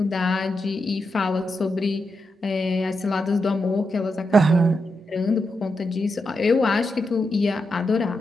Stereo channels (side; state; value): both; normal; correlation 0.86